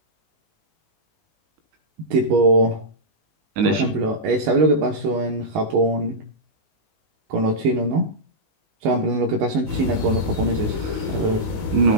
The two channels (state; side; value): late; left; 19 ms